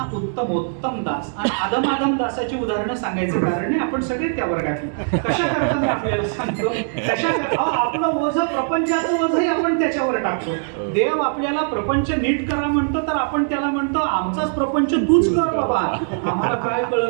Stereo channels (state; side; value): silent; left; 61 dB below the other